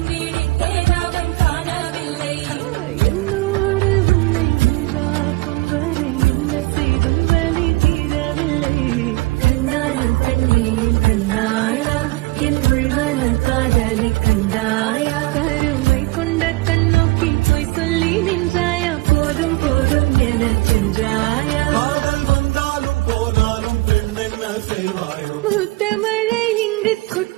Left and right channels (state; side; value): quieter; left; 22.0 dB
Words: என்னோடு உன்னை உண்டாக்கும் வரை என்ன செய்தும் வலி தீரவில்லை கண்ணாலும் தண்ணீர் கண்ணாளா என் உள்மனம் காதலை கண்டாயா கருமை கொண்ட கண்ணோக்கி போய் சொல்லி நின்றாயா போதும் போதும் என சென்றாயா வந்தாலும் போனாலும் பெண் என்ன செய்வாயோ முத்தமழை இங்கு